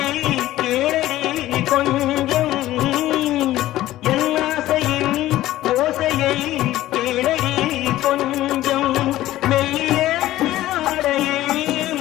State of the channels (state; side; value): quieter; right; 15.1 dB